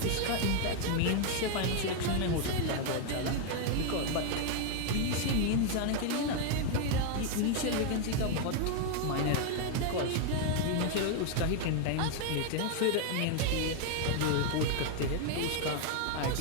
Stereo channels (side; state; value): both; different; correlation 0.00